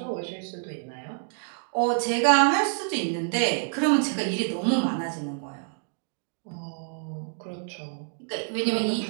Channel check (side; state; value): left; silent; 60 dB below the other